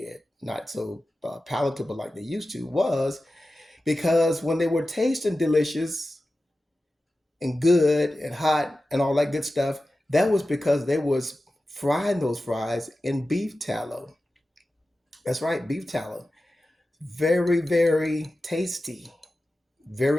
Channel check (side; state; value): both; normal; correlation 0.94